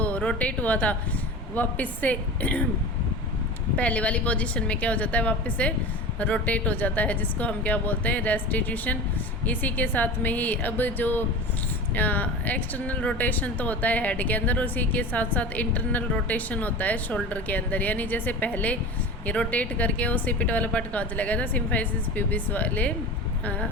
रोटेट हुआ था, वापस से पहले वाली पोजीशन में क्या हो जाता है, वापस से रोटेट हो जाता है, जिसको हम क्या बोलते हैं, रेस्टिट्यूशन। इसी के साथ में ही अब जो एक्सटर्नल रोटेशन तो होता है हेड के अंदर, उसी के साथ साथ इंटरनल रोटेशन होता है शोल्डर के अंदर। यानी जैसे पहले ये रोटेट करके वो सिपिट वाला पार्ट कहाँ चला गया था, सिम्फाइसिस प्यूबिस वाले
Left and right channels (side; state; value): both; normal; correlation 0.32